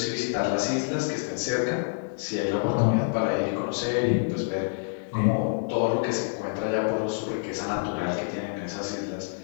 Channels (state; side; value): silent; right; digital silence